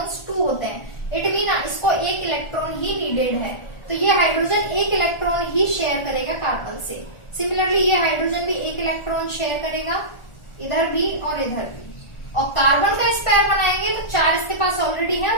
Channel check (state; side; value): late; right; 1.4 ms